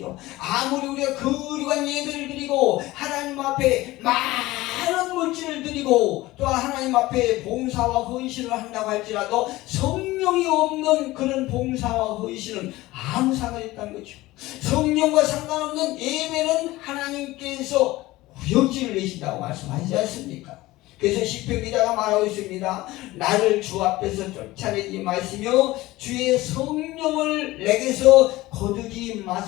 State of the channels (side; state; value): right; quieter; 18.4 dB